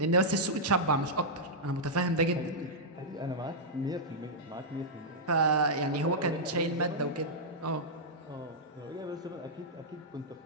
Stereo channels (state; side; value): normal; both; correlation -0.09